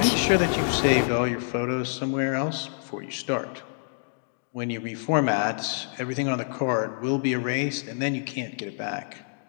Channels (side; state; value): right; silent; digital silence